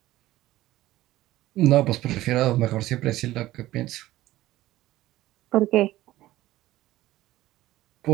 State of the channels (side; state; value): left; quieter; 16.0 dB